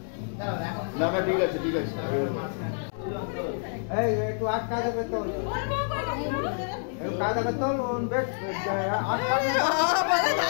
না না ঠিক আছে ঠিক আছে। এই একটু আটকা দেবে তো, একটু কায়দা করে তোল, বেশ আটকা দেবে।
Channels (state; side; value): silent; right; 60 dB below the other